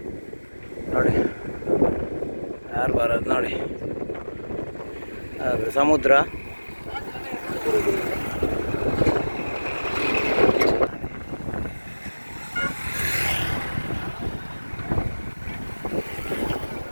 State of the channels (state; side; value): inverted; both; correlation -1.00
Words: ನೋಡಿ ಹಾರ್ಬರ್, ಅದು ನೋಡಿ, ಅದು ಸಮುದ್ರ.